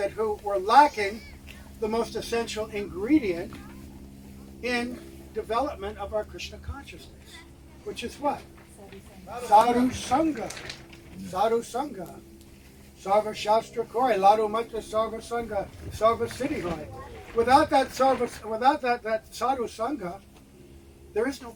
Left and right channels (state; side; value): identical; both; correlation 1.00